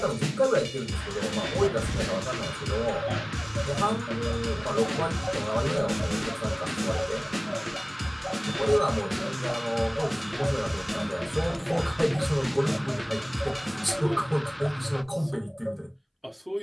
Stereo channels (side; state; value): both; identical; correlation 1.00